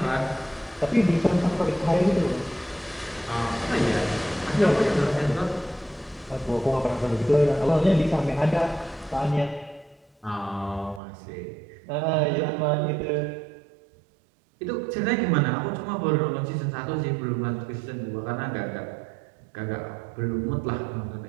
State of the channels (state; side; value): drops out; left; at 11.0 s